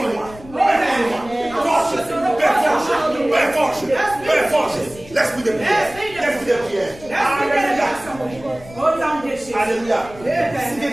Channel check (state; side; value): noise; left; rumble, 19 dB below the sound